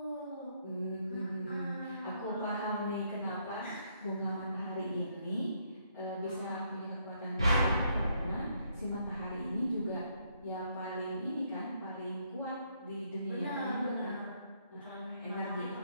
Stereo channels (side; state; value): both; inverted; correlation -0.72